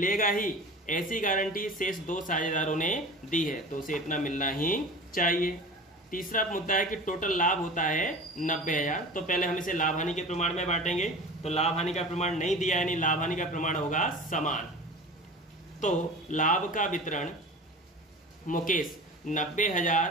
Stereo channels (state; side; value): normal; both; correlation 0.36